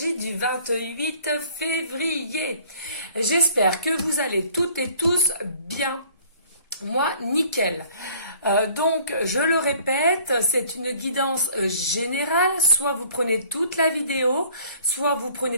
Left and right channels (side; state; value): both; inverted; correlation -0.55